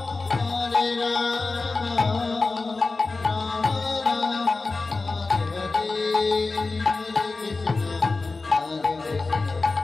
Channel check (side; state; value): right; quieter; 3.7 dB